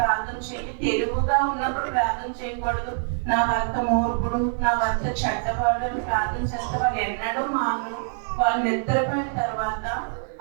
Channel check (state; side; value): silent; left; 62 dB below the other